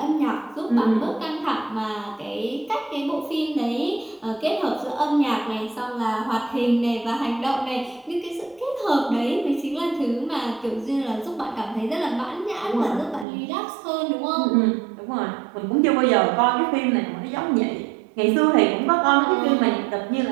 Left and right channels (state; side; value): drops out; left; at 13.2 s